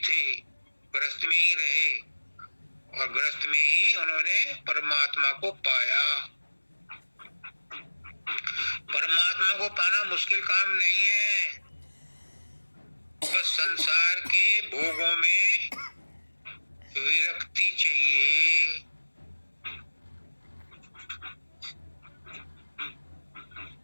गृहस्थ में ही रहे और गृहस्थ में ही उन्होंने परमात्मा को पाया। परमात्मा को पाना मुश्किल काम नहीं है, बस संसार के भोगों में विरक्ति चाहिए।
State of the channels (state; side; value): inverted; both; correlation -1.00